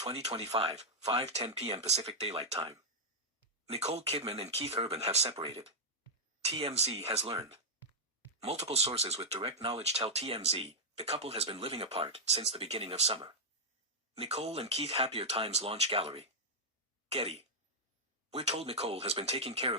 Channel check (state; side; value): normal; both; correlation -0.04